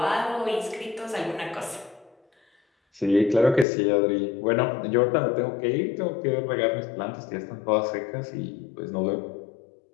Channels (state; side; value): drops out; right; at 3.7 s